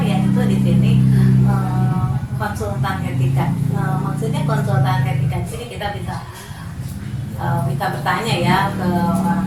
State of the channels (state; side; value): identical; both; correlation 1.00